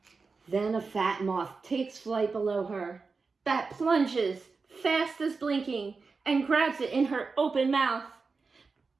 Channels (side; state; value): left; quieter; 4.5 dB